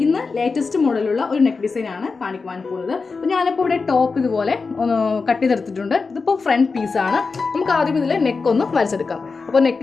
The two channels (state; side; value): quieter; right; 4.5 dB